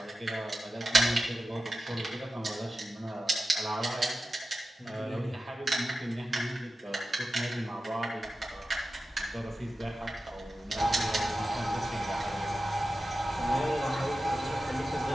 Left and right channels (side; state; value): both; normal; correlation 0.94